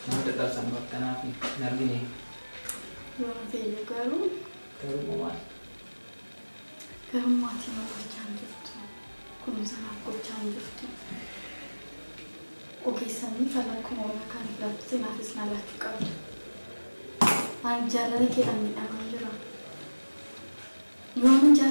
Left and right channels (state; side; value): inverted; both; correlation -1.00